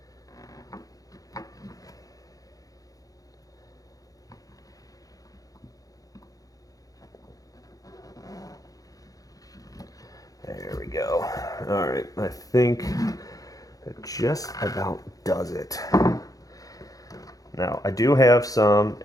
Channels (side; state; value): right; late; 0.17 ms